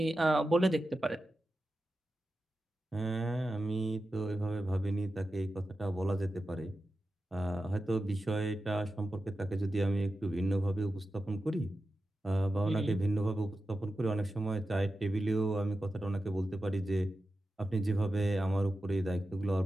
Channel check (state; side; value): normal; both; correlation 0.92